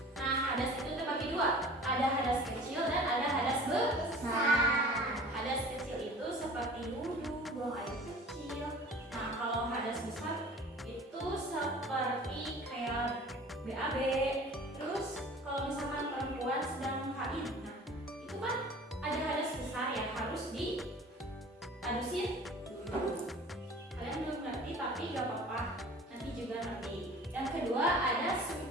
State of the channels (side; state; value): both; normal; correlation 0.44